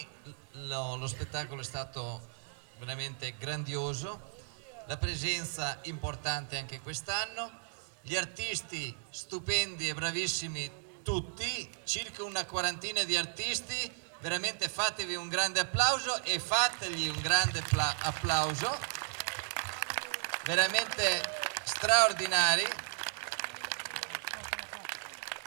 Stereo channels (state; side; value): silent; left; 54 dB below the other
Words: lo spettacolo è stato veramente grandioso, la presenza importante anche quest'anno, gli artisti stupendi e bravissimi tutti, circa una quarantina di artisti, veramente fatevi un grande applauso e fategli un grande applauso, veramente straordinari.